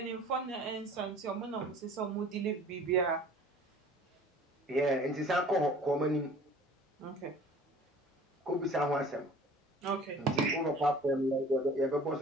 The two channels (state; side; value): normal; both; correlation 0.47